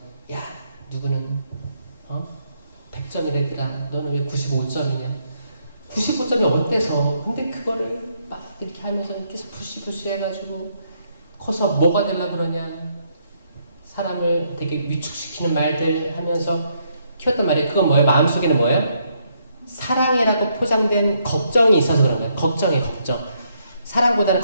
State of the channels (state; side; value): inverted; both; correlation -0.74